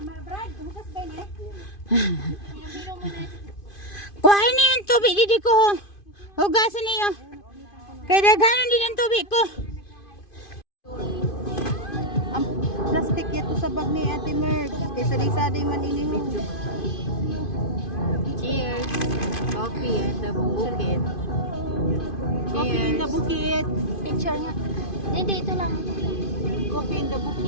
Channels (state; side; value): late; right; 2.5 ms